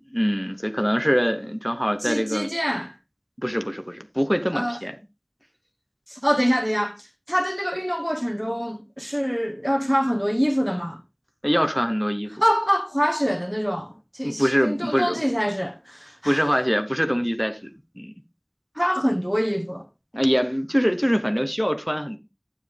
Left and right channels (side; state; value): both; identical; correlation 1.00